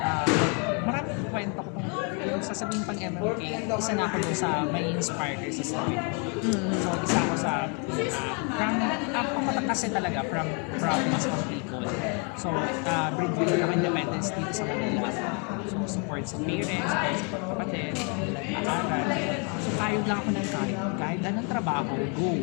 maraming kwento ko kung yung sasabihin pang MMK, isa na ako dun sa may inspire kayo sa story. So, isa ako sa, from kasi talaga, from province of Bicol. So, breadwinner ako independence dito sa Manila. So, support sa parents, support sa kapatid, nag-aaral. So, kayod lang ako ng kayod. Kahit anong trabaho, go.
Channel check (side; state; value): right; quieter; 36.4 dB